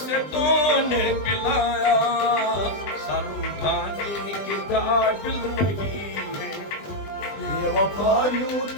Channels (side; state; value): right; late; 20 ms